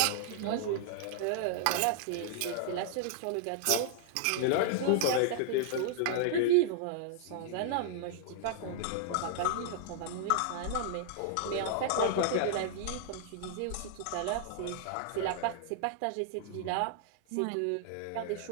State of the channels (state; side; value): different; both; correlation -0.01